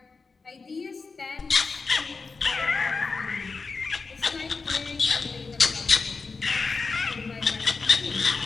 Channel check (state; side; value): quieter; right; 4.4 dB